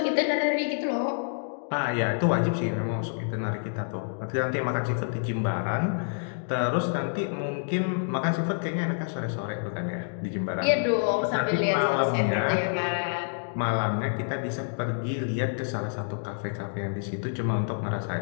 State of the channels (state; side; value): silent; right; digital silence